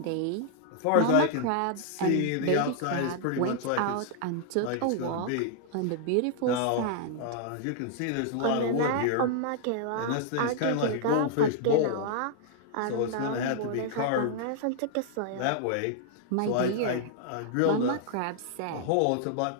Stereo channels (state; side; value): different; both; correlation -0.01